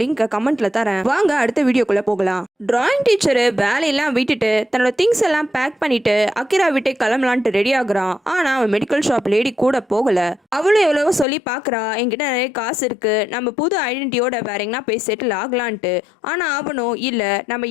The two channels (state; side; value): drops out; right; at 11.2 s